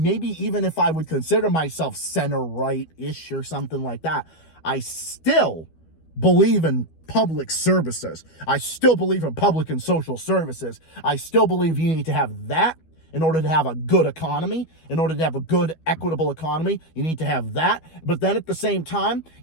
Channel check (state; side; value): late; right; 12 ms